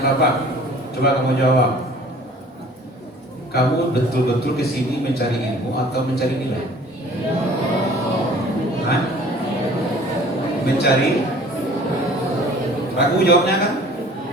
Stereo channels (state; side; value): normal; both; correlation 0.50